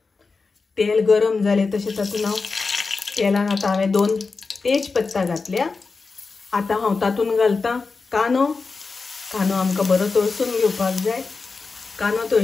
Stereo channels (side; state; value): right; quieter; 4.3 dB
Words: तेल गरम जालें तशें तातूंत हांव तेलान आतां हांवें 2 तेजपत्ता घातल्या। आतां हांव तातूंत घालता कांदो। कांदो आमकां बरो तळसून घेवपाक जाय। कांदो